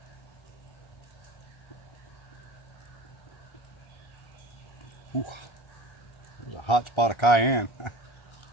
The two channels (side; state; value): right; late; 1.3 ms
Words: ooh, there's a hot spot of cayenne.